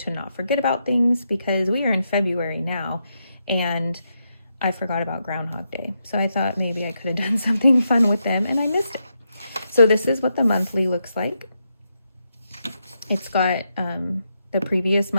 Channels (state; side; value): inverted; both; correlation -0.83